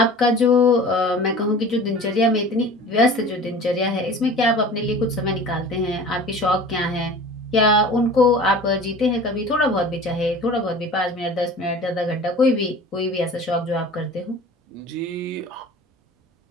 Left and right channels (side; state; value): both; normal; correlation 0.41